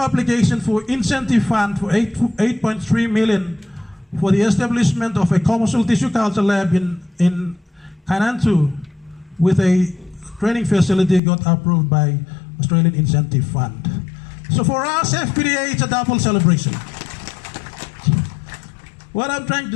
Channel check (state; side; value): drops out; right; at 11.2 s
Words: application for incentive fund for 8.3 million for the establishment of a commercial tissue culture lab in Kainantu with a training facility got approved by Australian Incentive Fund. So for us, FPDA, it's a double celebration. What I'm trying